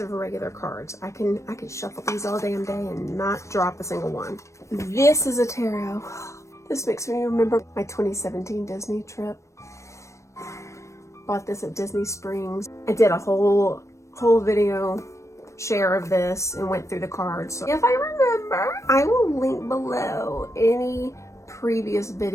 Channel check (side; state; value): right; late; 0.14 ms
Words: regular cards. I can shuffle these all damn day and not drop a single one. This is a tarot. This makes me remember my 2017 Disney trip. Bought this at Disney Springs. I did a whole video share of this and went through the cards. So if I remember, I will link below any previous